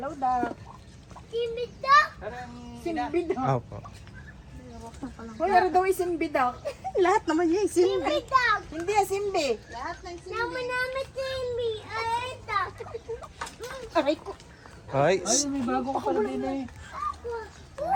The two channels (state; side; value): identical; both; correlation 1.00